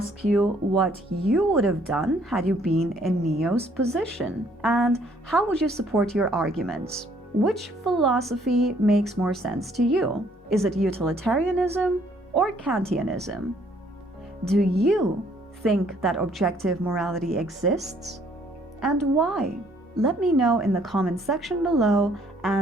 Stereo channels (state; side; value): normal; both; correlation 0.63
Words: you what you would have done had you been in Neo's position, and how would you support your arguments? Which philosophy makes more sense to you? Is it utilitarianism or Kantianism? Do you think that objective morality exists? And why? Let me know in the comment section below,